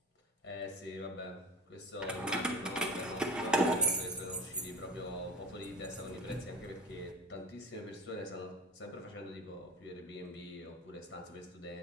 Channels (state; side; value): normal; both; correlation 0.30